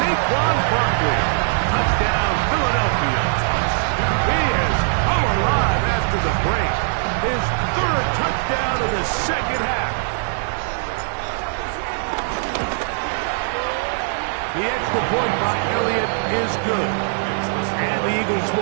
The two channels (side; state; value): left; silent; digital silence